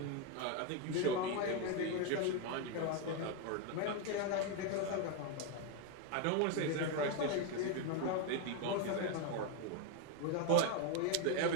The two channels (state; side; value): different; both; correlation 0.02